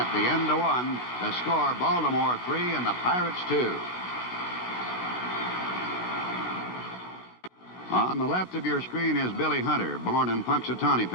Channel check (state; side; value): late; right; 16 ms